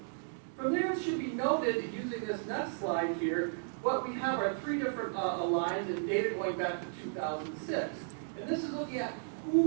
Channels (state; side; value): silent; left; digital silence